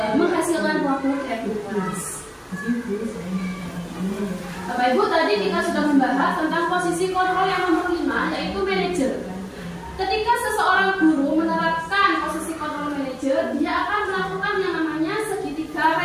menghasilkan buah-buah keyakinan kelas. Bapak Ibu, tadi kita sudah membahas tentang posisi kontrol yang nomor 5, yaitu manajer. Ketika seseorang guru menerapkan posisi kontrol manajer, dia akan melakukan yang namanya segitiga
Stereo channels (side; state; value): both; identical; correlation 1.00